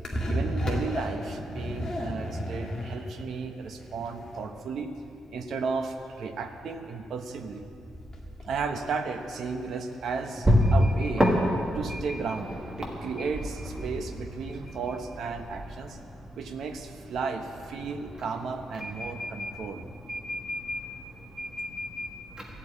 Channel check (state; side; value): normal; both; correlation 0.82